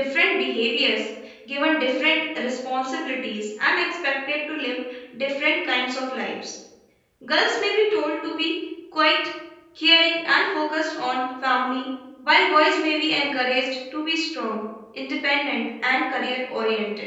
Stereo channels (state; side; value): identical; both; correlation 1.00